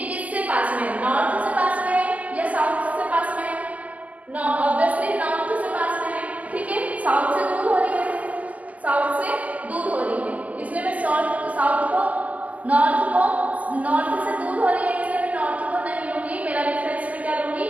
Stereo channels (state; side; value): late; left; 0.075 ms